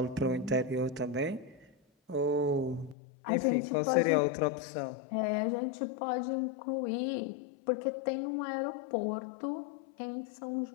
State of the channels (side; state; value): right; drops out; at 3.0 s